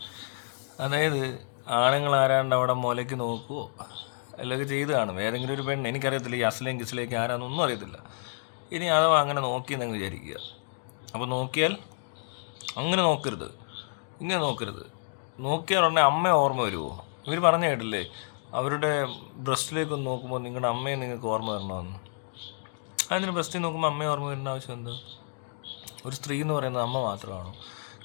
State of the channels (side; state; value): right; silent; digital silence